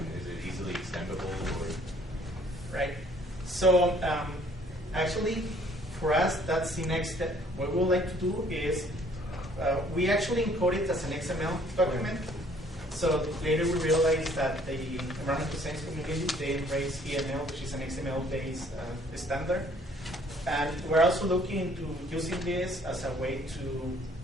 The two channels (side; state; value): both; normal; correlation 0.60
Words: Is it easily extendable? Or? Right. So actually, for us, that's the next step. What we would like to do is we actually encode it as an XML document. So later we realized that the environmental science community, they embrace EML, which is an XML-based standard. And we're also looking into using this as a way to